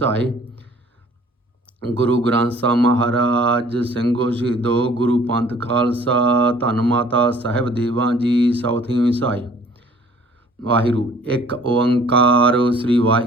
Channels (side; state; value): both; normal; correlation 0.54